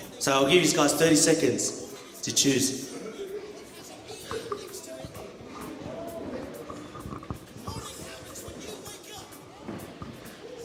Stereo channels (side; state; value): both; identical; correlation 1.00